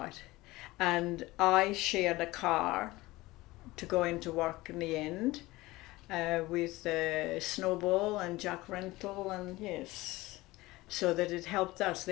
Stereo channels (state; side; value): quieter; right; 19.6 dB